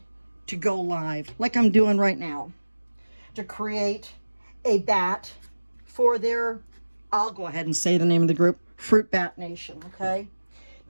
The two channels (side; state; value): both; inverted; correlation -1.00